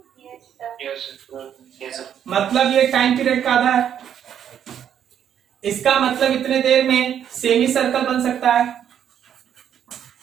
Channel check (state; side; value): quieter; left; 9.3 dB